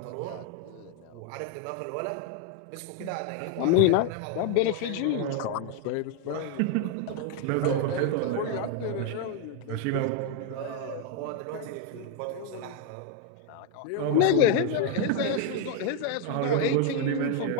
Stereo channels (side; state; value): both; different; correlation 0.01